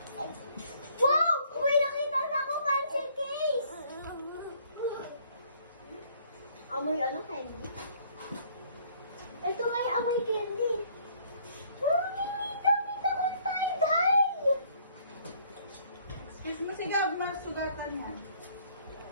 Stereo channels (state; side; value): inverted; both; correlation -0.61